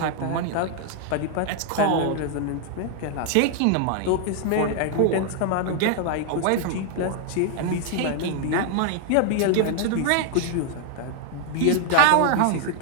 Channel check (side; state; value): both; different; correlation 0.00